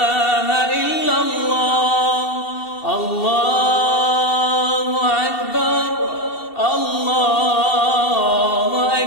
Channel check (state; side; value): late; right; 2.7 ms